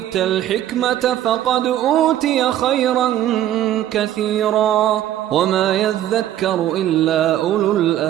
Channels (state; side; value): quieter; left; 12.4 dB